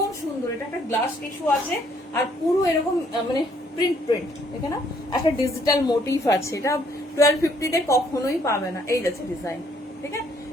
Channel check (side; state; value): both; normal; correlation 0.66